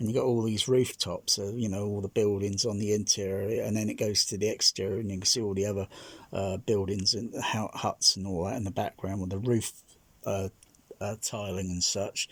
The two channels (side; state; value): both; identical; correlation 1.00